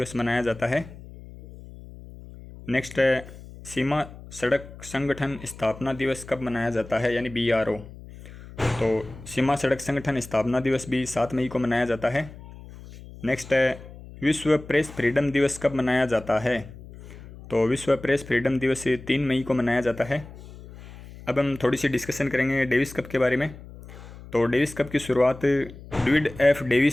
मनाया जाता है। नेक्स्ट है, सीमा सड़क संगठन स्थापना दिवस कब मनाया जाता है, यानी BRO? तो सीमा सड़क संगठन स्थापना दिवस भी 7 मई को मनाया जाता है। नेक्स्ट है, विश्व प्रेस फ्रीडम दिवस कब मनाया जाता है? तो विश्व प्रेस फ्रीडम दिवस 3 मई को मनाया जाता है। अब हम थोड़ी सी डिस्कशन करेंगे डेविस कप के बारे में। तो डेविस कप की शुरुआत डेविड F.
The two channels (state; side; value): noise; left; hum, 17 dB below the sound